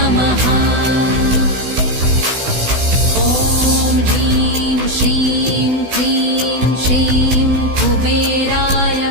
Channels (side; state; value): left; late; 16 ms